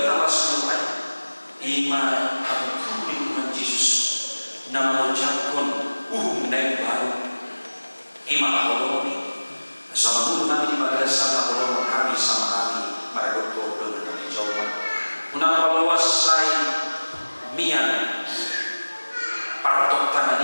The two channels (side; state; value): both; inverted; correlation -1.00